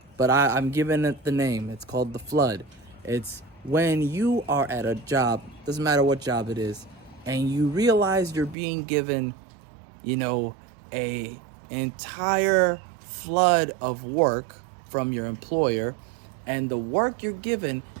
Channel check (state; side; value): drops out; left; at 8.6 s